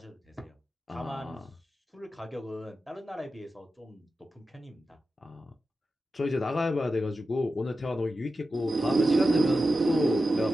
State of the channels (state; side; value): normal; both; correlation 0.91